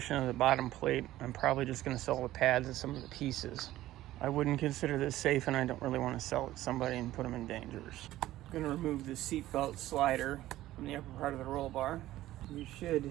of the bottom plate, I'm probably just going to sell the pads and some of the pieces. I wouldn't consider this safe, and I don't really want to sell it to somebody and put them in danger. I'm going to remove the seatbelt slider from the upper part of the roll bar. You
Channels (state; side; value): quieter; left; 15.1 dB